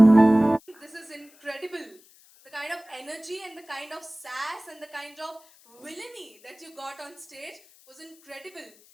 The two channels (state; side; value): noise; left; hiss, 27 dB below the sound